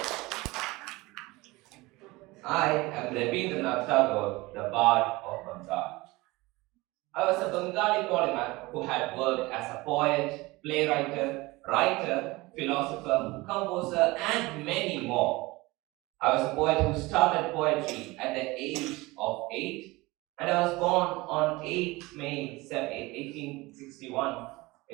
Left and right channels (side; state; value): left; quieter; 21.8 dB